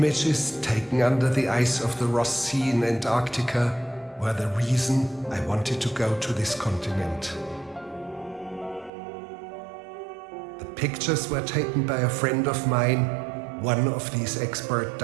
taken under the ice of the Ross Sea in Antarctica were the reason I wanted to go to this continent. The pictures were taken by a friend of mine, one of these expert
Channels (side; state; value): left; drops out; at 8.9 s